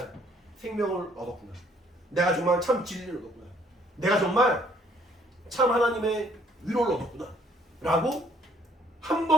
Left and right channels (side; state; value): both; normal; correlation 0.62